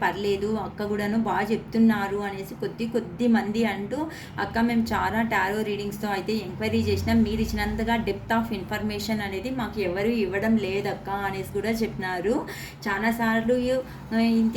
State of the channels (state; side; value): identical; both; correlation 1.00